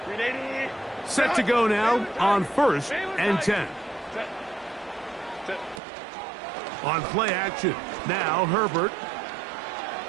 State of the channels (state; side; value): drops out; left; at 5.8 s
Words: Set to go now on 1st and 10. On play action, now Herbert.